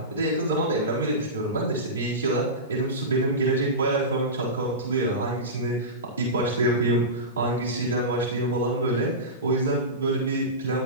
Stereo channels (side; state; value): both; normal; correlation -0.19